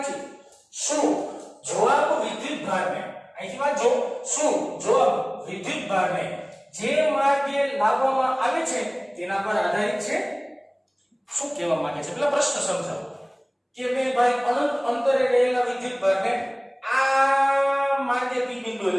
શું જવાબ વિદ્યુતભારને, અહીંથી વાંચો, શું જવાબ વિદ્યુતભારને જે માર્ગે લાવવામાં આવે છે તેના પર આધારિત છે? શું કહેવા માંગે છે પેલા પ્રશ્ન સમજાવો કે ભાઈ અનંત અંતરે રહેલા વિદ્યુતભારને આ માર્ગે p બિંદુએ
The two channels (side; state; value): both; identical; correlation 1.00